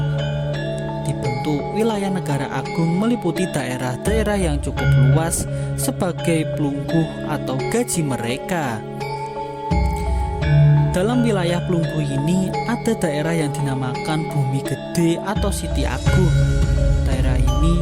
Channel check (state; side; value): identical; both; correlation 1.00